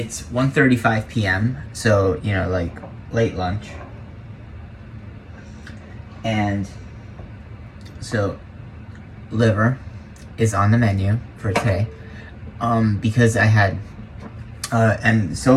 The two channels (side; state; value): both; identical; correlation 1.00